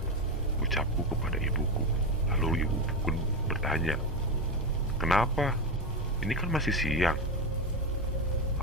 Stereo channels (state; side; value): normal; both; correlation 0.13